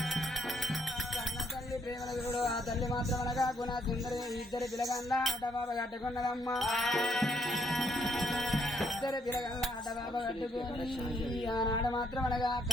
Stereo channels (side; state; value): both; normal; correlation 0.71